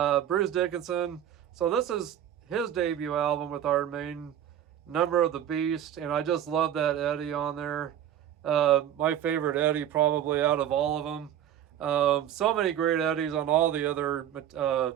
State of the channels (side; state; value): left; quieter; 10.5 dB